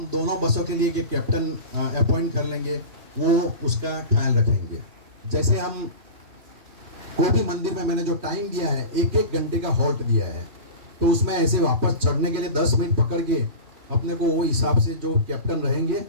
दोनों बसों के लिए एक कैप्टन अपॉइंट कर लेंगे, वो उसका ख्याल रखेंगे। जैसे हम कोई भी मंदिर में मैंने जो टाइम दिया है 1-1 घंटे का हॉल्ट दिया है, तो उसमें ऐसे वापस चढ़ने के लिए 10 मिनट पकड़ के अपने को वो हिसाब से जो कैप्टन रहेंगे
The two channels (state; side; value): late; left; 3.1 ms